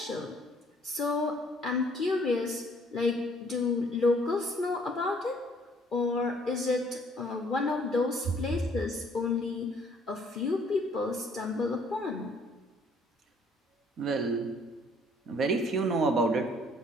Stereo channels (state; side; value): normal; both; correlation 0.61